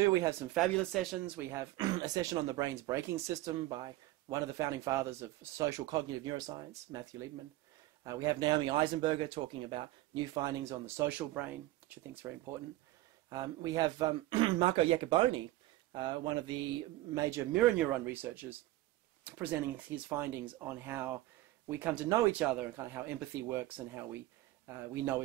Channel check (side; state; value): left; quieter; 16.9 dB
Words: we have some fabulous sessions. We have a session on the brain's braking system by one of the founding fathers of social cognitive neuroscience, Matthew Liebman. We have Naomi Eisenberger talking about new findings on the social brain, which I think is very important. We have Marco Iacoboni, one of the major mirror neuron researchers, presenting his findings on how we come to know each other and kind of how empathy works and how we know